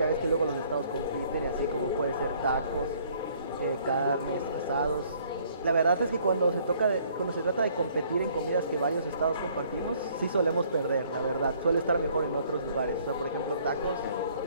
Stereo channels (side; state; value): both; inverted; correlation -0.61